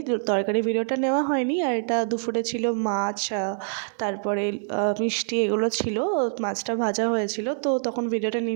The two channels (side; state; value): left; silent; digital silence